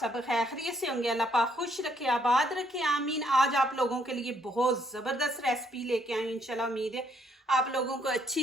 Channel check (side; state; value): both; normal; correlation 0.70